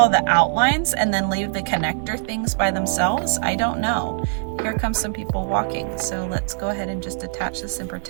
the outlines and then leave the connector things by themselves? I don't know. Here comes some people walking. So let's go ahead and just attach this and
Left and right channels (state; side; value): silent; left; digital silence